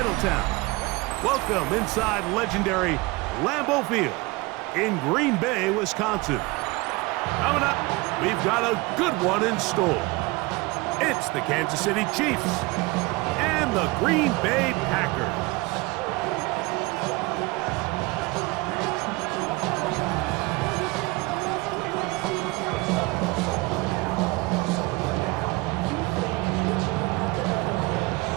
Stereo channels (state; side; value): quieter; left; 23.8 dB